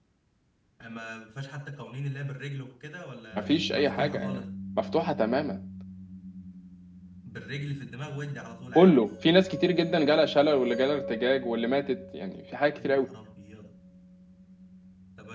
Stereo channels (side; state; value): both; identical; correlation 1.00